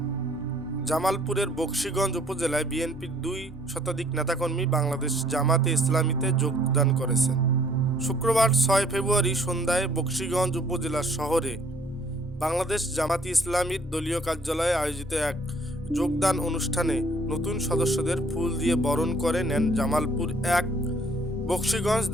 জামালপুরের বকশীগঞ্জ উপজেলায় বিএনপির 2 শতাধিক নেতাকর্মী বাংলাদেশ জামাতে ইসলামীতে যোগদান করেছেন। শুক্রবার 6 ফেব্রুয়ারি সন্ধ্যায় বকশীগঞ্জ উপজেলা শহরে বাংলাদেশ জামাতে ইসলামীর দলীয় কার্যালয়ে আয়োজিত এক যোগদান অনুষ্ঠানে নতুন সদস্যদের ফুল দিয়ে বরণ করে নেন জামালপুর 1 বকশীগঞ্জ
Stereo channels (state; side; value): normal; both; correlation 0.60